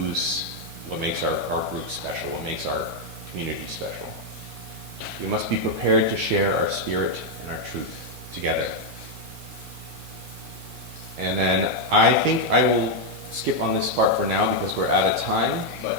what makes our group special, what makes our community special. We must be prepared to share our spirit and our truth together. And then I think I will skip on this part for now, because we're out of time,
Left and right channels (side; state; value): left; late; 1.2 ms